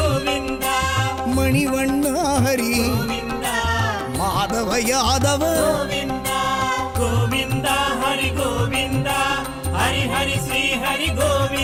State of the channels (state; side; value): identical; both; correlation 1.00